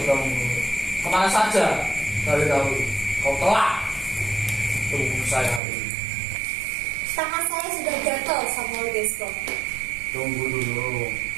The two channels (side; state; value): left; drops out; at 5.6 s